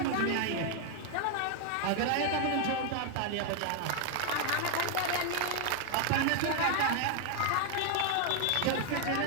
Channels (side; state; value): both; different; correlation 0.00